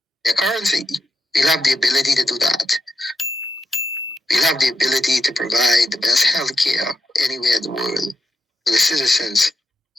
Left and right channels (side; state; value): both; normal; correlation 0.85